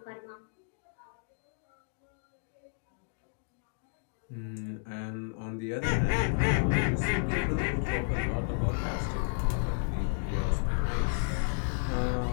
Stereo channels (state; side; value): silent; right; digital silence